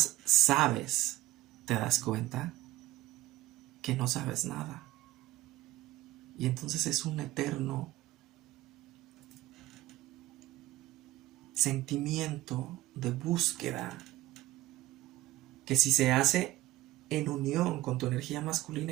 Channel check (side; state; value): left; quieter; 16.5 dB